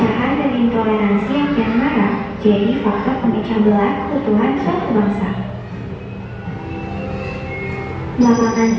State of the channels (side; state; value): both; identical; correlation 1.00